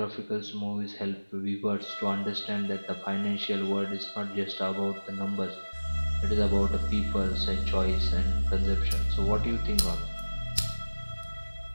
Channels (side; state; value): both; inverted; correlation -1.00